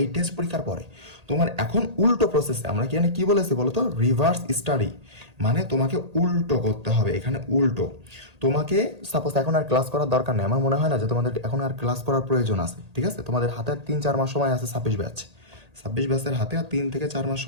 এই টেস্ট পরীক্ষার পরে। তোমার এখন উল্টো প্রসেসে আমরা কি বলেছি বলো তো? রিভার্স স্টাডি, মানে তোমাকে উল্টো করতে হবে। এখানে উল্টো তোমাকে সাপোজ এখন আর ক্লাস করার দরকার নেই, আমার মনে হয় না যে তোমাদের এখন আর ক্লাস করার প্রয়োজন আছে, ঠিক আছে। তোমাদের হাতে 3-4 মাস সময় আছে, 26 ব্যাচের হাতে আর 3 থেকে 4 মাস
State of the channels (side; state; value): left; late; 1.8 ms